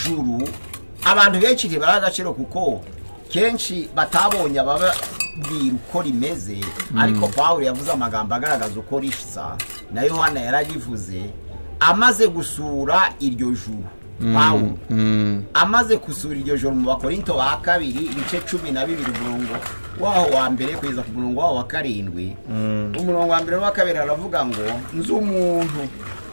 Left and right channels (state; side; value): inverted; both; correlation -1.00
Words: abantu benshi ntibara agaciro kuko kenshi batabonye ababwira uko rimeze. Ariko Pawulo yavuze amagambo agaragaza uko risa, na Yohana yarabivuze amaze gusura iryo juru. Pawulo amaze gusura iryo juru mu Bakorinto ba kabiri ibice 12 umurongo waho wa mbere kugeza ku murongo waho wa 7. Umurongo wa mbere wa kabiri aravuga ngo nzi umuntu